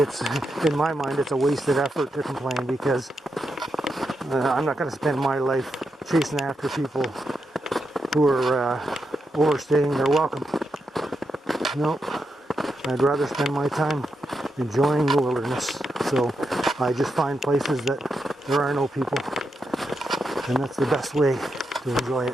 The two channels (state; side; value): normal; both; correlation 0.85